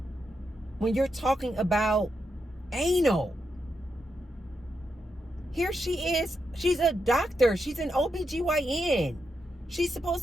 when you're talking about anal. Here she is. She's a doctor. She's an OBGYN. She's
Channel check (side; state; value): both; normal; correlation 0.84